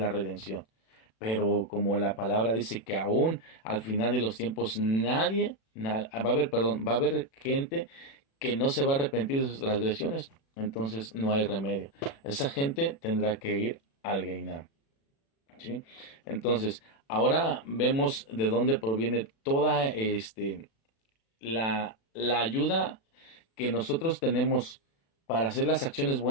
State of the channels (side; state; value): right; late; 36 ms